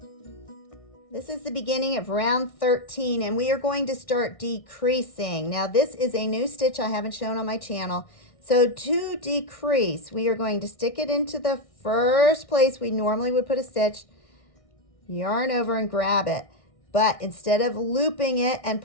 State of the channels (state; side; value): late; right; 1.6 ms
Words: This is the beginning of round 13, and we are going to start decreasing. Now this is a new stitch I haven't shown on my channel. So to decrease, we are going to stick it into the first place we normally would put a stitch, yarn over and grab it. But instead of looping it and